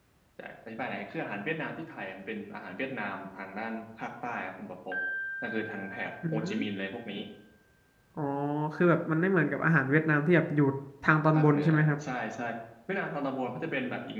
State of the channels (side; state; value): both; identical; correlation 1.00